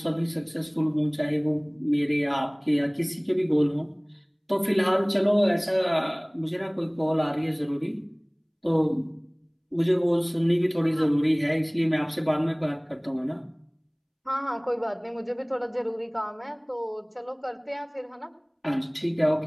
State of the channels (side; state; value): both; identical; correlation 1.00